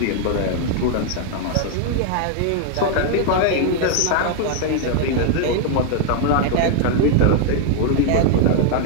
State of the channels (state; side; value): different; both; correlation 0.00